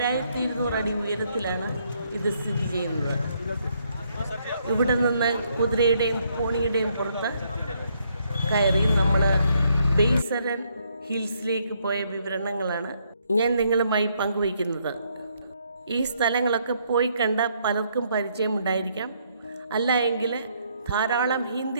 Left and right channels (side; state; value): both; inverted; correlation -0.72